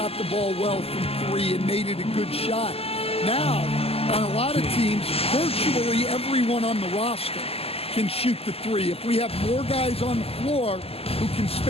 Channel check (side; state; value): right; late; 0.29 ms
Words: the ball well from 3 and made it a good shot. Now, on a lot of teams, virtually everyone on the roster can shoot the 3. If we have more guys on the floor who can